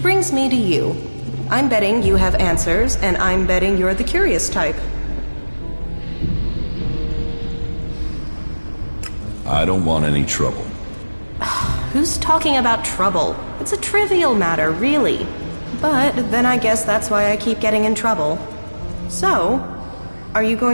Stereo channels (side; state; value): both; inverted; correlation -1.00